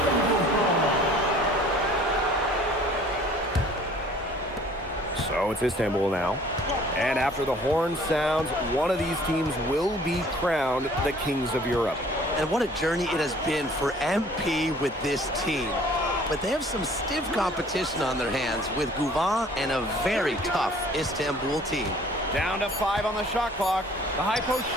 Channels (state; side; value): normal; both; correlation 0.53